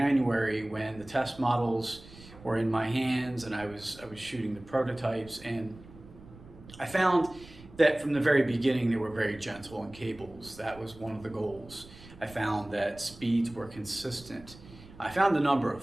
when the test models were in my hands and I was shooting the prototypes. And I found that from the very beginning, they were very gentle in cables. That was one of the goals. I found that speeds were consistent. I found a number of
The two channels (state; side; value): noise; right; rumble, 20 dB below the sound